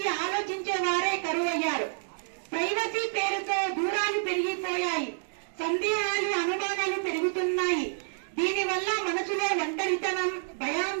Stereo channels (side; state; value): left; silent; digital silence